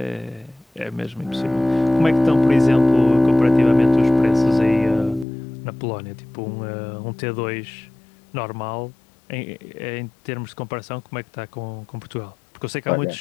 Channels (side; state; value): right; drops out; at 5.2 s